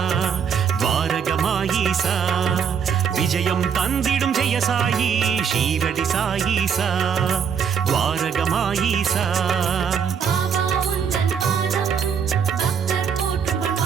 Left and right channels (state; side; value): quieter; left; 7.1 dB